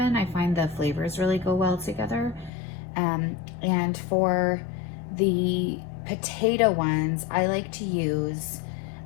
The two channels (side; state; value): right; drops out; at 2.5 s